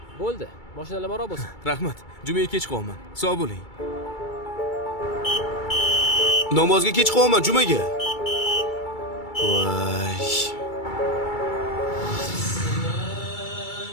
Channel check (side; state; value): right; late; 2.3 ms